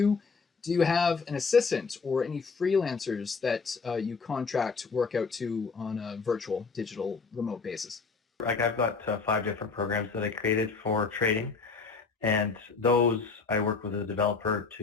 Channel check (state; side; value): quieter; right; 4.8 dB